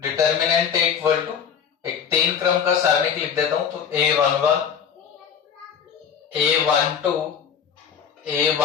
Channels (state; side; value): quieter; right; 7.6 dB